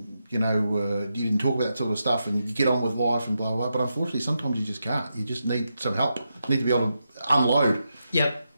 you didn't talk about that sort of stuff, and you get on with life and blah, blah, blah. But unfortunately, sometimes you just can't. You just need some help. You need to be able to unload. Yep.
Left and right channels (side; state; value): both; inverted; correlation -0.86